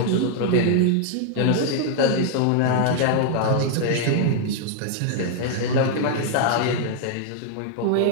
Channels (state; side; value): different; both; correlation 0.00